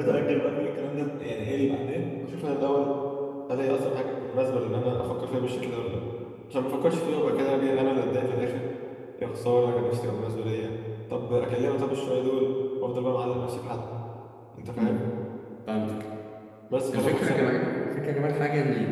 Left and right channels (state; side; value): identical; both; correlation 1.00